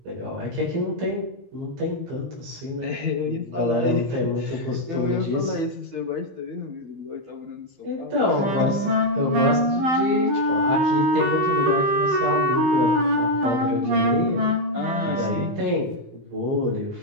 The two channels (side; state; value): left; late; 16 ms